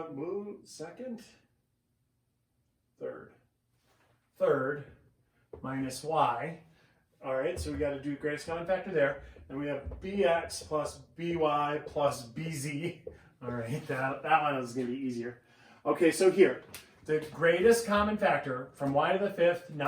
third minus y. All right, so we got to do greatest common factor there. And we have bx plus by plus bz. All right, that one is going to be easier. Okay, so here, the greatest common factor from y to the 5th,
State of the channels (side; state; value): both; identical; correlation 1.00